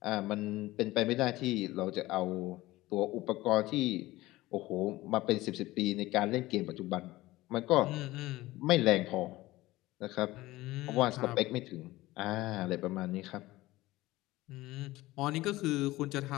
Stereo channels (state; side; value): quieter; right; 18.2 dB